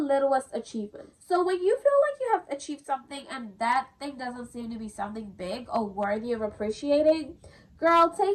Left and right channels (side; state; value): both; identical; correlation 1.00